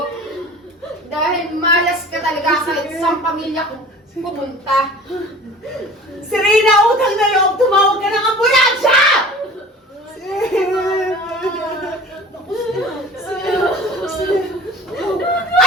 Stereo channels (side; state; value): both; normal; correlation 0.43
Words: Dahil malas ka talaga kahit sa pamilya ko pupunta. Serena, utang na loob, tumawag ka ng ambulansya!